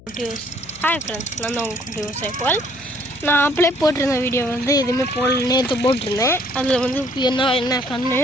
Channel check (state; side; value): noise; left; hum, 23 dB below the sound